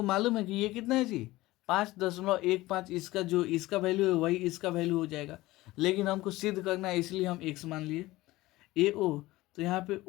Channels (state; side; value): quieter; right; 18.4 dB